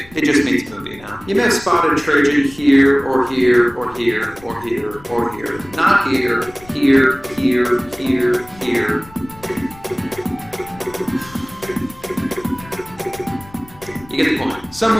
it just means movie now. You may have spotted Trajan here, or here, or here, or here, or here. Not here, here, here, here, here. You get the point.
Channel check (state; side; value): noise; left; rumble, 22 dB below the sound